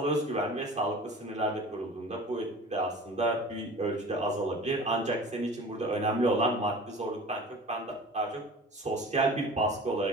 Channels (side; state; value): both; normal; correlation 0.40